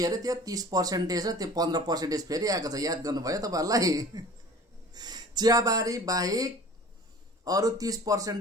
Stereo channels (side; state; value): both; normal; correlation 0.44